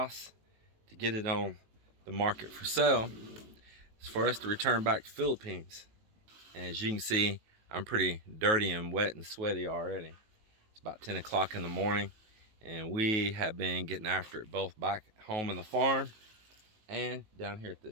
to get it on the market for sale. It's for us to return back to Philippines. And as you can see, I'm pretty dirty and wet and sweaty already. It's about 10 o'clock in the morning, and we have been getting after it both back home in the farm and down here at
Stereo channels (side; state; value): left; late; 19 ms